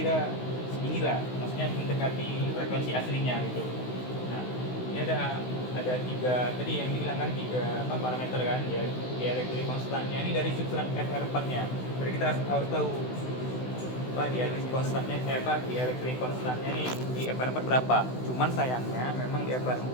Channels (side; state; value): right; late; 16 ms